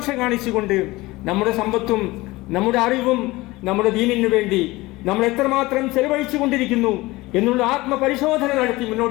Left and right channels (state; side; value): quieter; right; 20.4 dB